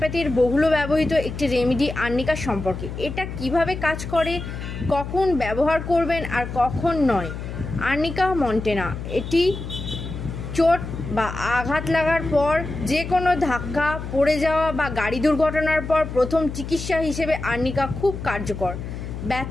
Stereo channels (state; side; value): noise; left; hum, 8 dB below the sound